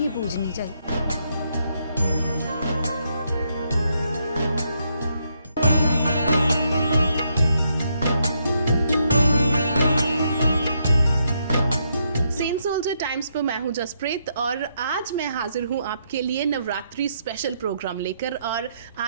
पूजनी चाहिए। टाइम्स पर मैं हूं जसप्रीत, और आज मैं हाजिर हूं आपके लिए नवरात्रि स्पेशल प्रोग्राम लेकर। और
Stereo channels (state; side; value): inverted; both; correlation -0.77